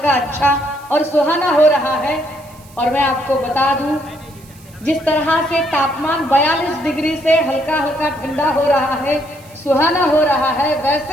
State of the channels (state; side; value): noise; right; hiss, 25 dB below the sound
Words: अच्छा और सुहाना हो रहा है। और मैं आपको बता दूं, जिस तरह से तापमान 42 डिग्री से हल्का हल्का ठंडा हो रहा है, सुहाना हो रहा है,